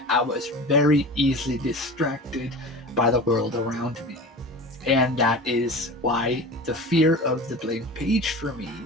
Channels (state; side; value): normal; both; correlation 0.33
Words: I was very easily distracted by the world around me. And that is why the fear of the blank page for me